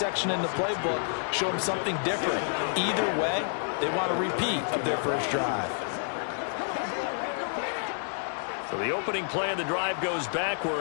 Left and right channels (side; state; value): right; silent; digital silence